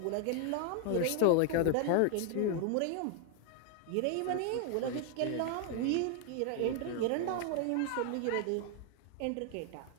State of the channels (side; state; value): both; different; correlation 0.00